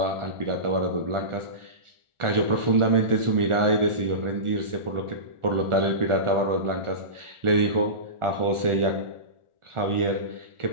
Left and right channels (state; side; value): late; left; 1.4 ms